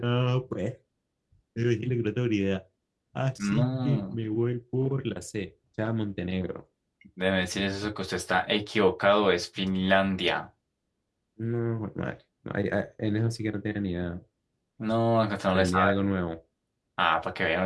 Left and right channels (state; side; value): identical; both; correlation 1.00